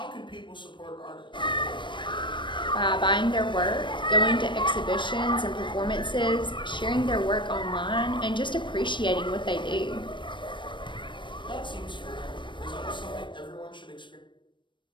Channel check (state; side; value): late; right; 0.23 ms